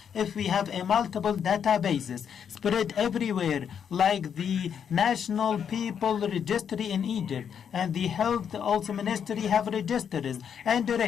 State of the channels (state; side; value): quieter; right; 7.9 dB